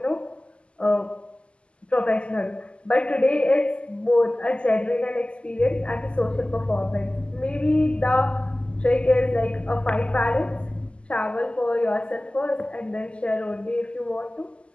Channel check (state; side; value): late; right; 0.053 ms